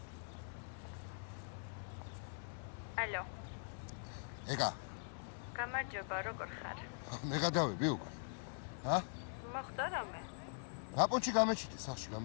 ალო. ეგა. გამარჯობა, როგორ ხარ? მე გადავები უკვე. ჰა? მოხდა რამე? ნაპონჩი გამეჩიტე სახში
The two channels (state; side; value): silent; right; digital silence